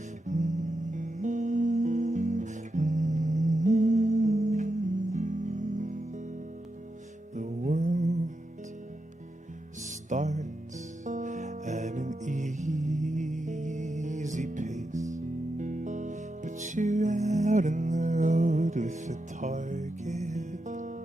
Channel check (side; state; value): both; normal; correlation 0.87